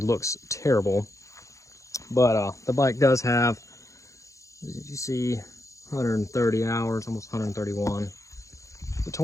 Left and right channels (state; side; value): late; right; 0.15 ms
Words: looks terrible. But the bike does have, as you see, 130 hours, almost 131. The